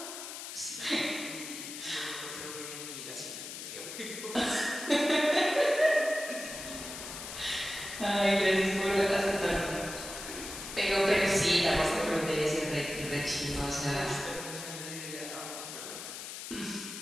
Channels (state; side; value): noise; left; hiss, 9 dB below the sound